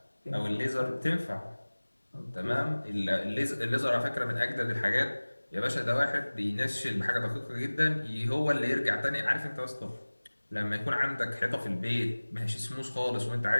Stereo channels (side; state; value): both; inverted; correlation -1.00